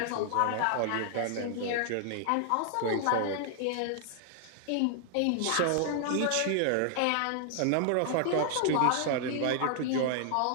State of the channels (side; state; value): both; different; correlation 0.00